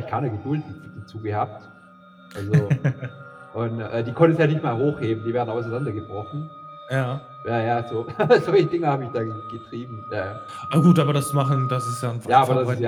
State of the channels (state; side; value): identical; both; correlation 1.00